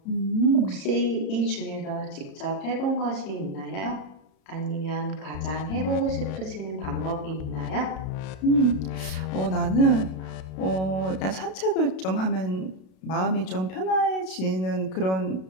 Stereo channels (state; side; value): late; right; 32 ms